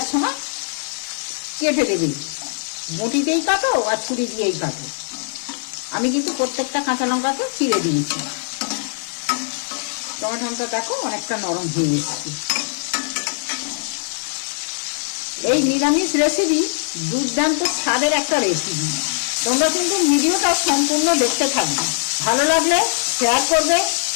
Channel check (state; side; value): silent; right; digital silence